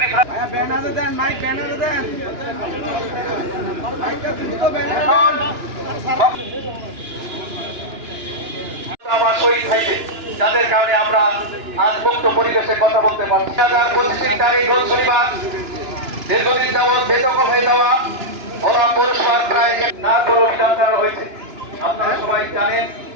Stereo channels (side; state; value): left; late; 2.9 ms